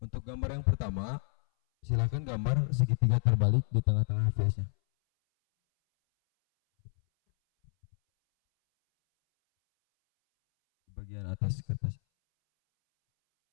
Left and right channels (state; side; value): silent; right; 58 dB below the other